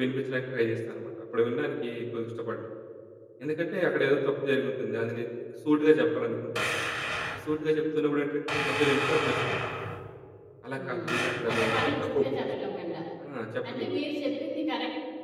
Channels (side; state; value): both; identical; correlation 1.00